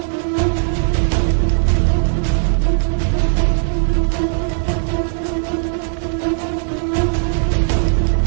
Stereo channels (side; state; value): left; silent; digital silence